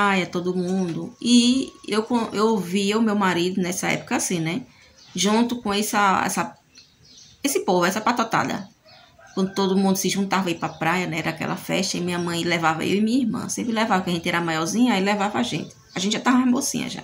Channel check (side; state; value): both; identical; correlation 1.00